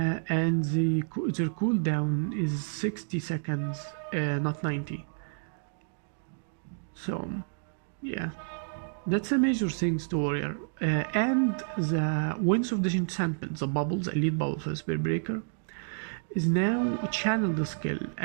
their cooldown is 60 seconds, not 90. So, yeah, that's a major things to Warrior. And the Winds of Disenchantment, the bubbles, elite bubble for Spear Breaker, is now channel the skill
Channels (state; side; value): silent; left; digital silence